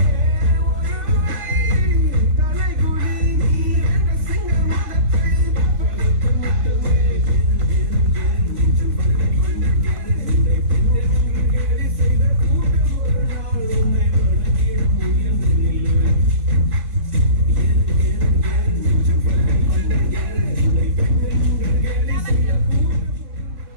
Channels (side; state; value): left; late; 3.5 ms